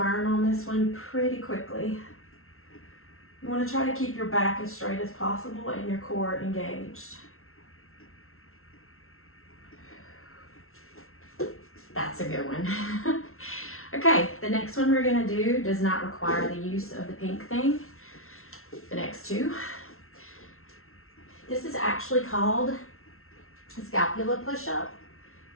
on this one pretty quickly. You want to try to keep your back as straight as possible and your core engaged. That's a good one. Okay, the next one we're gonna do does not require the use of the pink thing. The next two. This is actually called a scapula push-up.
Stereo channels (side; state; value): right; late; 0.62 ms